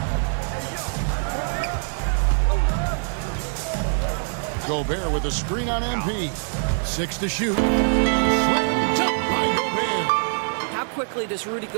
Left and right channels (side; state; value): left; silent; digital silence